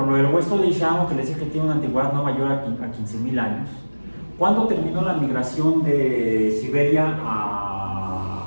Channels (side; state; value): both; inverted; correlation -1.00